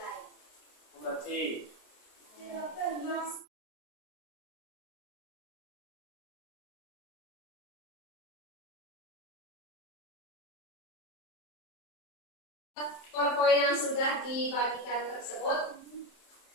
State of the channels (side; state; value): right; late; 27 ms